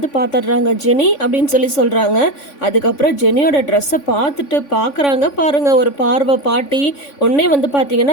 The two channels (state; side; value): late; right; 3.5 ms